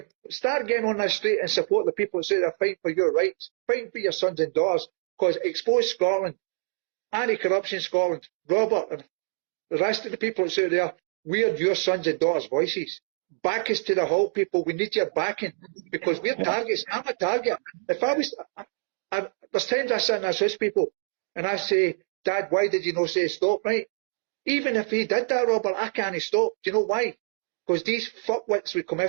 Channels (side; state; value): left; silent; digital silence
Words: start getting on the street and support the people that say they're fighting for your rights, fighting for your sons and daughters, because Expose Scotland, Anti-Corruption Scotland, Robert and the rest of the people that say there, we're your sons and daughters' voices. Back us to the halt, people. We need your backing because we're targets. I'm a target. If I was, there's times I sit and I assist people and I say, Dad, why did you not say stop, right? Even if he did that, Robert, I can't stop. Do you know why? because these fuckwits would come